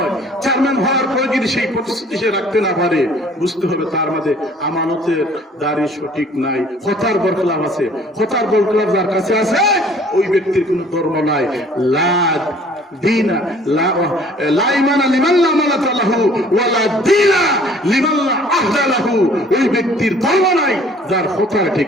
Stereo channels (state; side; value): normal; both; correlation 0.54